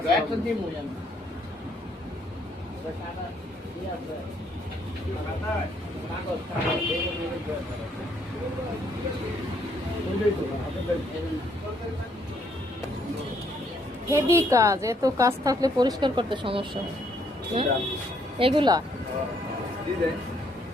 দয়াল তো দিমু জানো টাকা কি আছে টাকা কাগজ টাকা এই হেভি কাজ, এত কাজ থাকলে পরিষ্কার করতে সমস্যা হয়। এগুলা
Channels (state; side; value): normal; both; correlation 0.69